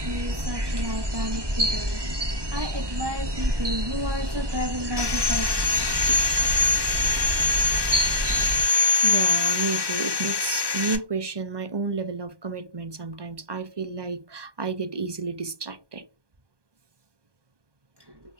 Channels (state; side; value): late; left; 1.2 ms